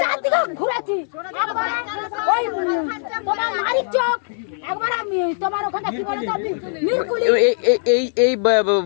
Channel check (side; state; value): right; silent; digital silence